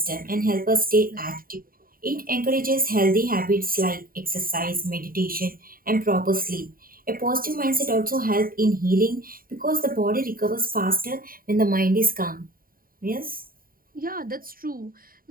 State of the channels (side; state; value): left; late; 0.42 ms